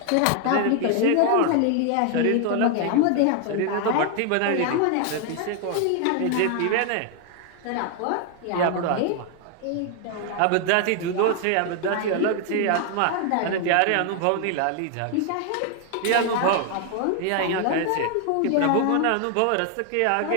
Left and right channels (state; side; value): different; both; correlation 0.00